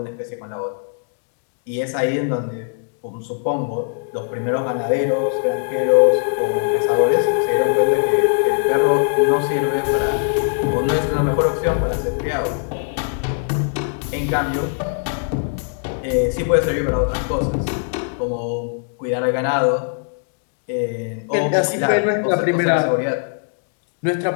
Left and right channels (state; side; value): silent; right; 62 dB below the other